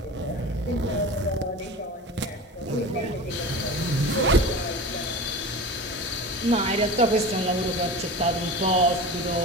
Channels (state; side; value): normal; both; correlation 0.33